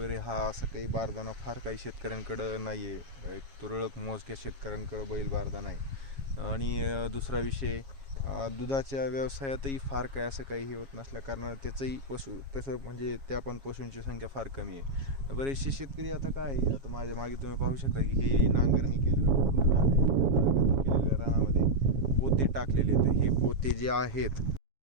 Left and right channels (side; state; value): left; late; 7.3 ms